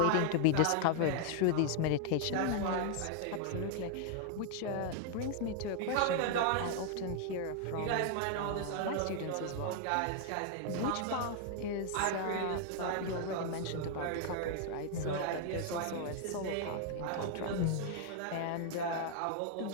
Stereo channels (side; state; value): both; different; correlation 0.00